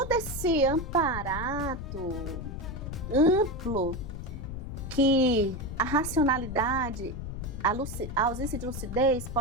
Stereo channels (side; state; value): left; noise; rumble, 7 dB below the sound